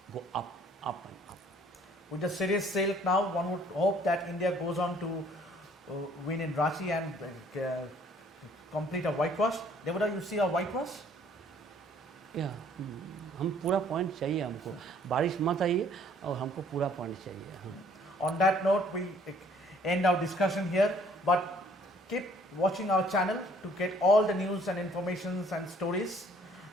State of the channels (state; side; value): normal; both; correlation 0.59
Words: go up and up. With the series sailed now, one would hope that India goes on to win in Ranchi and complete a whitewash. Devada, you see a whitewash? या हम पूरा point चाहिए हमको, बारिश मत आइए और हमको पूरा पॉइंट चाहिए. On that note, we end our discussion here, but keep watching our channel to get all the news and informations and stories.